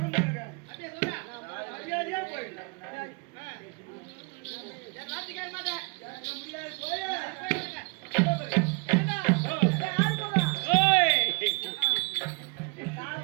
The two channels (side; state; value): left; quieter; 30.7 dB